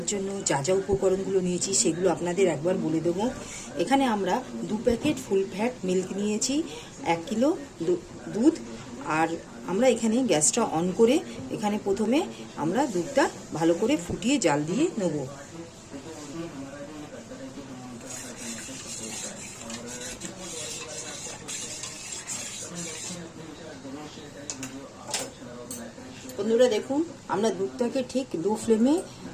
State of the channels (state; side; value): identical; both; correlation 1.00